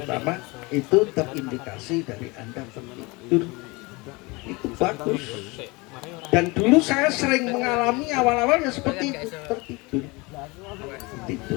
itu terindikasi dari Anda tertidur. Itu bagus. Dan dulu saya sering mengalami awal-awalnya seperti itu, tertidur.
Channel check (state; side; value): quieter; right; 25.3 dB